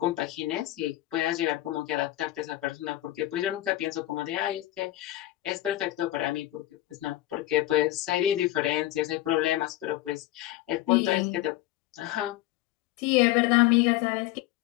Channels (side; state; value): right; quieter; 15.7 dB